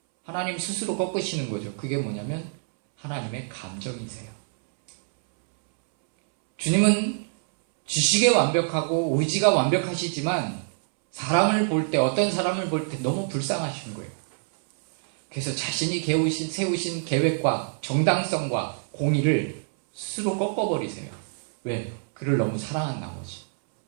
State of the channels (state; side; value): silent; left; 61 dB below the other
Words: 하나님 스스로 꺾으시는 거죠. 그게 뭐냐면 하나님의 감정이세요. 주님은 지식에 완벽하고 의지가 완벽하시지만 사람을 볼 때 어떤 사람을 볼 때 너무 불쌍하신 거예요. 그래서 자신이 세우신 계획과 정당성과 공의를 스스로 꺾어버리세요. 왜? 그를 너무 사랑한 나머지.